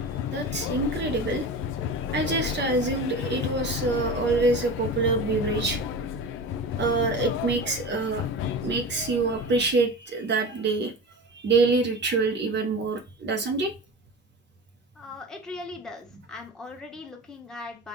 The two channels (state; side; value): normal; both; correlation 0.30